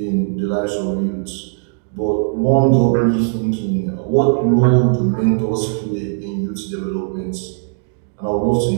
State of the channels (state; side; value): silent; left; digital silence